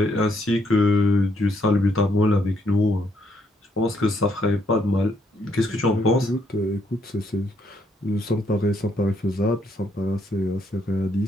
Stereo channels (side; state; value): both; normal; correlation 0.72